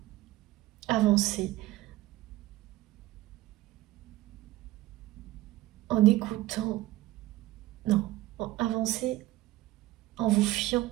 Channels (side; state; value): left; quieter; 16.6 dB